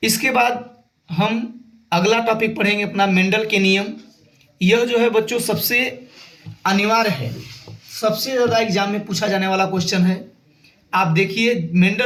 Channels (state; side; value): identical; both; correlation 1.00